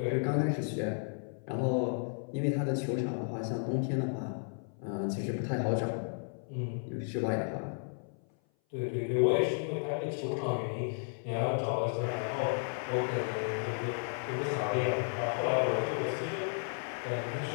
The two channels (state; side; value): silent; right; 55 dB below the other